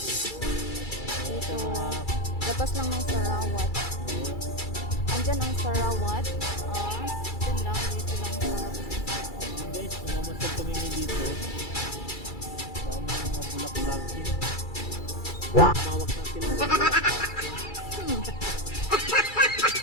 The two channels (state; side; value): late; right; 2.3 ms